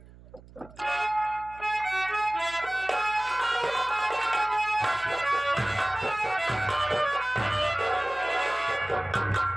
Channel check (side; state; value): right; noise; hum, 21 dB below the sound